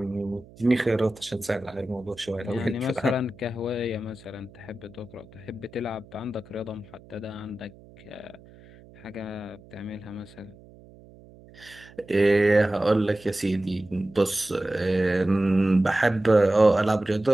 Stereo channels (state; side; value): noise; right; hum, 23 dB below the sound